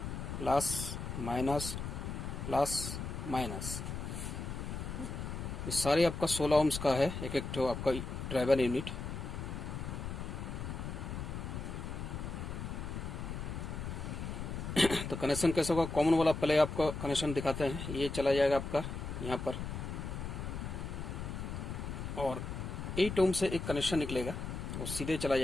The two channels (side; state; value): left; noise; rumble, 5 dB below the sound